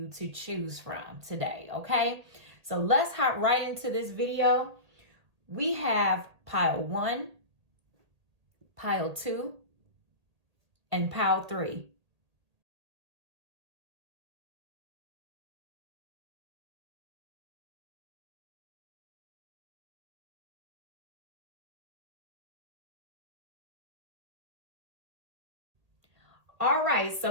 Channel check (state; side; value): late; left; 1.8 ms